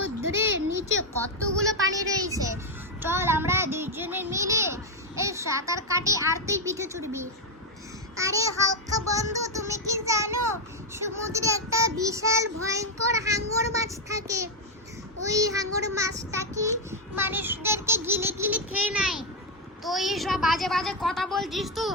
নিচে কতগুলো পানি রয়েছে। চল আমরা দুইজনে মিলে এই সাঁতার কাটি আর তুই পিঠে চড়বি। আরে হালকা বন্ধু, তুমি কি জানো সমুদ্রে একটা বিশাল ভয়ঙ্কর হাঙর মাছ থাকে। ওই হাঙর মাছটা কি মানুষদেরকে গিলে গিলে খেয়ে নেয়। তুই সব বাজে বাজে কথা বলছিস তো,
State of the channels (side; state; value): both; normal; correlation 0.03